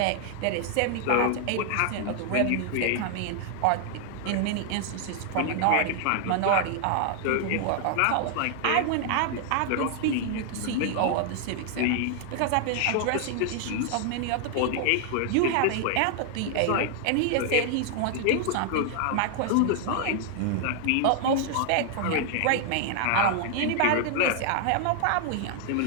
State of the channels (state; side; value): different; both; correlation 0.00